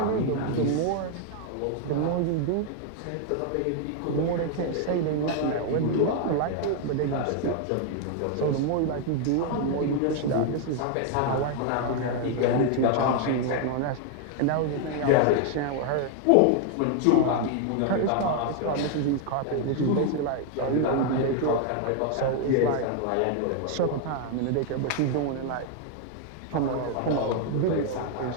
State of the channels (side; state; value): both; different; correlation 0.00